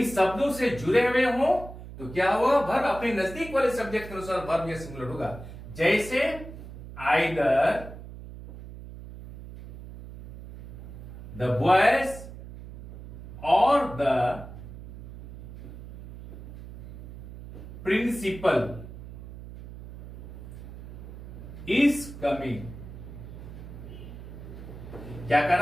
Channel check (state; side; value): noise; right; hum, 13 dB below the sound